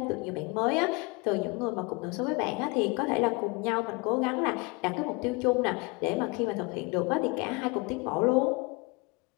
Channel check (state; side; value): quieter; right; 27.1 dB